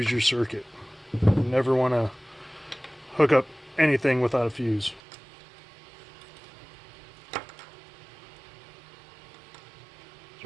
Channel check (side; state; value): left; drops out; at 5.0 s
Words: your circuit. You never want to hook up anything without a fuse.